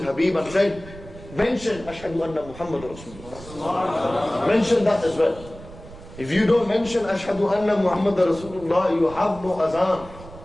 Habib and said, mention Ashhadu anna Muhammad Rasulullah. Mention that as well. If you don't mention Ashhadu anna Muhammad Rasulullah, you have no azan.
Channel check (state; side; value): noise; right; rumble, 17 dB below the sound